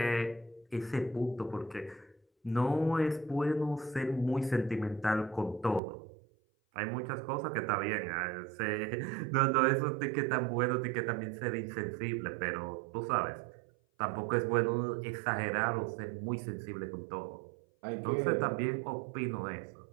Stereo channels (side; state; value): left; drops out; at 5.8 s